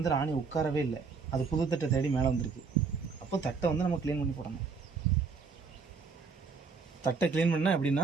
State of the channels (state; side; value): quieter; left; 5.0 dB